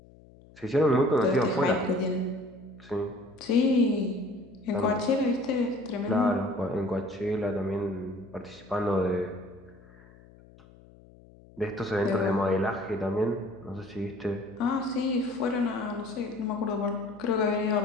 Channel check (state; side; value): noise; left; hum, 24 dB below the sound